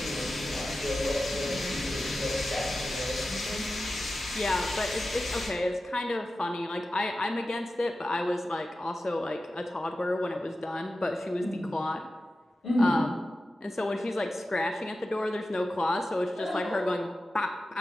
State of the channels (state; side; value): normal; both; correlation 0.93